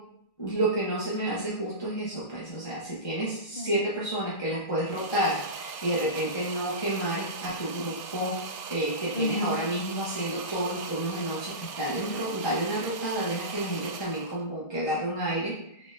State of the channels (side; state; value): right; late; 1.6 ms